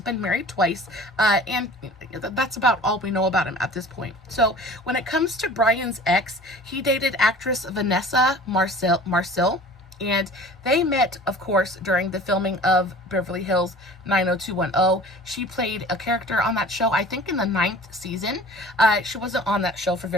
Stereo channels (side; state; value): both; normal; correlation 0.44